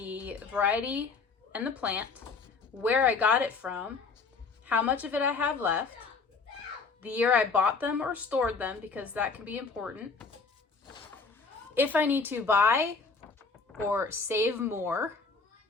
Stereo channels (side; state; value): right; quieter; 4.6 dB